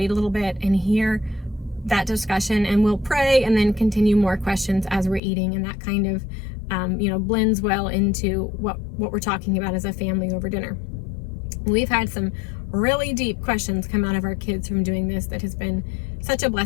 a little bit and hear that discussion, and we'll pray and then continue more questions as we're eating, and that kind of blends well into what we're talking about as a family over dinner. We've had some really deep questions come out of our kids from doing this that has been such a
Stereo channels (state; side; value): drops out; right; at 5.2 s